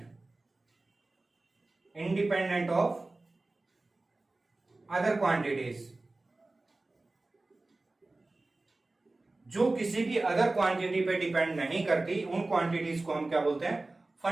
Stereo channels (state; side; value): quieter; left; 3.1 dB